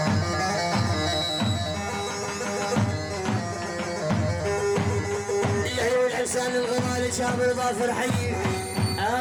العيون حسان الغمال شاب ظافر حي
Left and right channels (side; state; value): both; identical; correlation 1.00